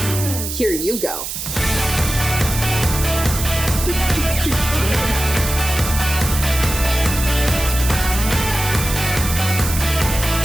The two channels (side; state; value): right; noise; hiss, 6 dB below the sound